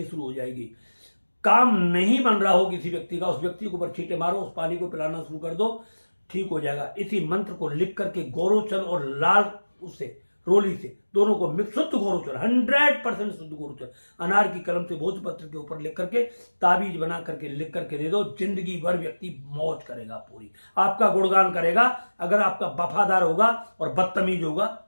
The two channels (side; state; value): both; inverted; correlation -1.00